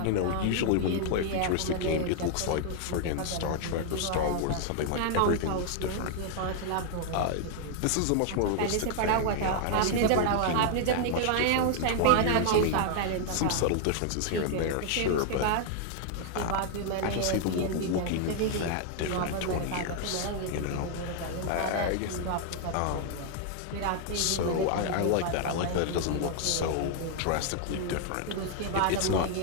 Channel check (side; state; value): both; different; correlation 0.00